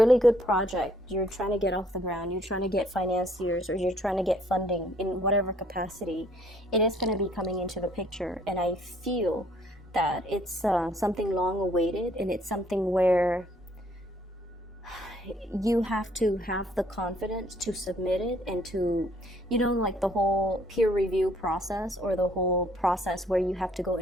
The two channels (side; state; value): both; normal; correlation 0.63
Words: good project, you're trying to get off the ground, you're trying to get financiers, or you're trying to get funding in whatever capacity, it is going to be coming into the picture. And I feel that it's something long awaited, and it's something where you have to have the confidence to submit it, and to, you know, like the whole peer review process, or the whole process where you have to go